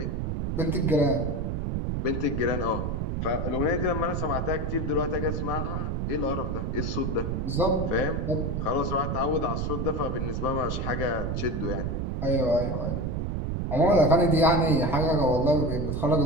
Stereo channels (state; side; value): noise; right; rumble, 1 dB below the sound